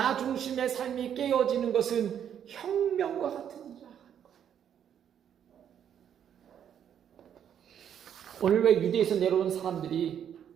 중심의 삶이 깨어지는 것은 혁명과 같은 일이라는 거예요. 오늘 왜 유대에서 내려온 사람들이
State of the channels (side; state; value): left; quieter; 9.1 dB